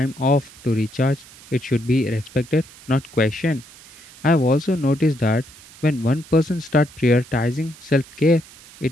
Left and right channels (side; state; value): right; noise; hiss, 22 dB below the sound